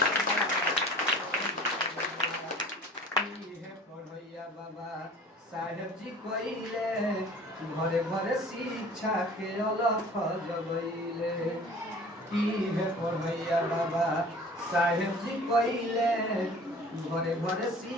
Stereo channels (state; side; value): normal; both; correlation 0.45